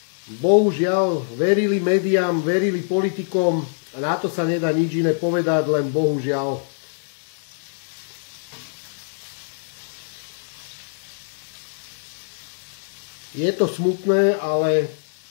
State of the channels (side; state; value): right; silent; digital silence